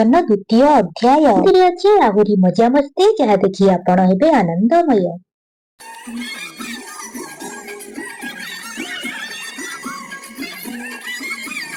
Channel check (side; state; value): both; identical; correlation 1.00